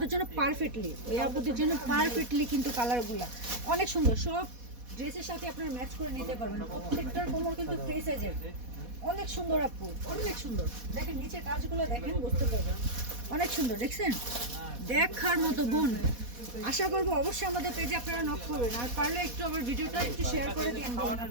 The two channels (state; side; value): late; left; 4.1 ms